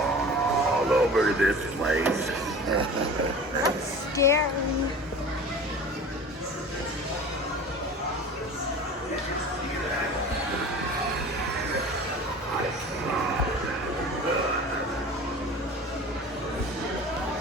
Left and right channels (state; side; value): normal; both; correlation 0.39